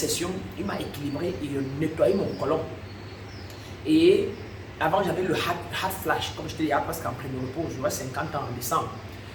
il m'a équilibré et nettoyé mon côlon. Et avant, j'avais le heart flash, comme je te disais, parce qu'en préménopause, j'aurais 50 ans en décembre.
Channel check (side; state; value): both; identical; correlation 1.00